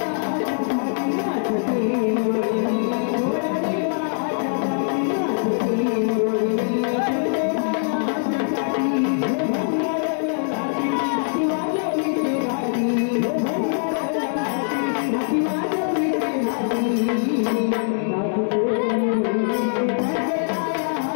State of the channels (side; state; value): right; silent; digital silence